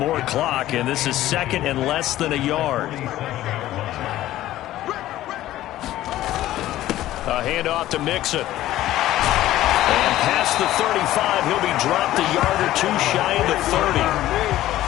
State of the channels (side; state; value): right; quieter; 14.4 dB